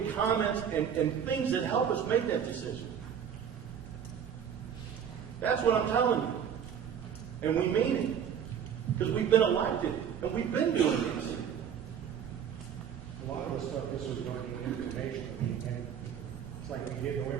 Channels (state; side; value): quieter; left; 8.2 dB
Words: comments and things that help us make that decision. That's what I'm telling you. And we mean it. Because we've been elected. And we've been doing this. A lot of the stuff, this was going to be information. And it's like we get no